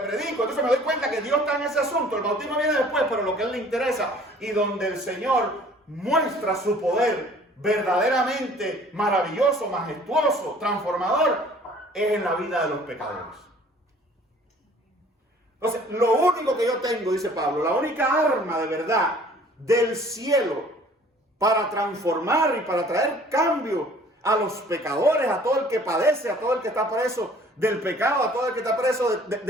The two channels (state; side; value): normal; both; correlation 0.53